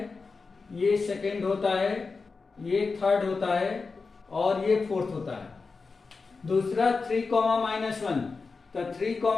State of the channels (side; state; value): right; quieter; 4.4 dB